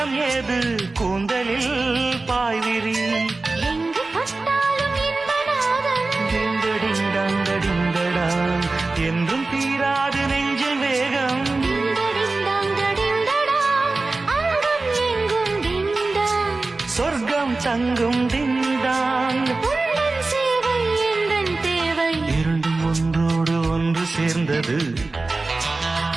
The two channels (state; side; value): quieter; left; 3.5 dB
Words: ஏது, கூந்தலில் பாய்விரி. எங்கு பட்டாலும் இன்பநாதம், டிண்டடிண்டடங் என்றும் தீராது நெஞ்சில் வேகம். டிண்டடிண்டாங் டிண்டடாங், அங்கும் எங்கும் டிண்டாங். சொர்க்கம் தங்கும் டிண்டாங். உந்தன் சேவை எந்தன் தேவை, இரண்டும் ஒன்றோடு ஒன்று சேர்ந்தது,